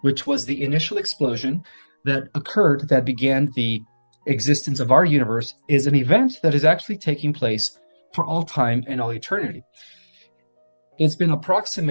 which was the initial explosion that occurred that began the existence of our universe, is an event that is actually taking place for all time and all eternity. It's been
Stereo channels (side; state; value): both; inverted; correlation -1.00